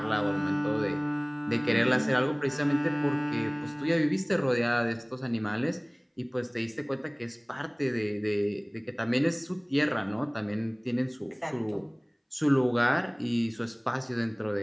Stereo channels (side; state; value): both; identical; correlation 1.00